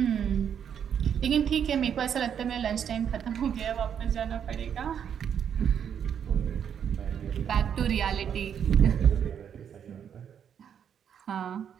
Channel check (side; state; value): left; quieter; 8.3 dB